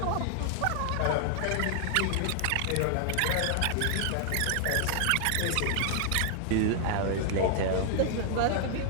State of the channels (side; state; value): both; different; correlation 0.00